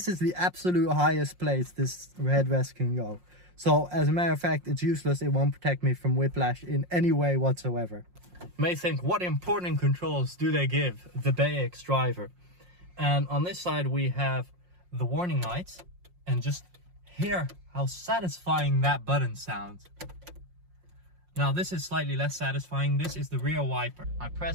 is the absolute highest place this headrest can go. So as a matter of fact, it's useless. It won't protect me from whiplash in any way whatsoever. You may think, what important controls do they give the BX driver? And on this side we have the warning lights, and just hear how satisfying that button sounds. Now this is slightly less satisfying. This is the rear wiper. I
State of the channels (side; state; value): left; late; 5.6 ms